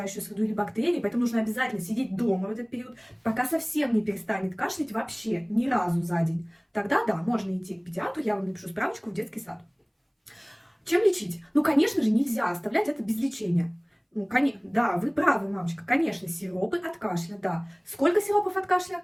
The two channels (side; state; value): both; identical; correlation 1.00